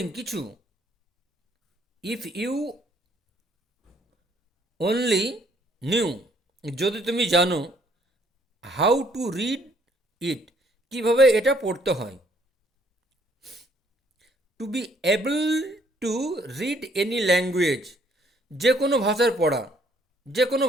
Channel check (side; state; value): both; normal; correlation 0.64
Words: কিছু, ইফ ইউ অনলি নিউ, যদি তুমি জানো, হাউ টু রিড ইট, কিভাবে এটা পড়তে হয়, to be able to read any language, যে কোনো ভাষার পড়া, যে কোনো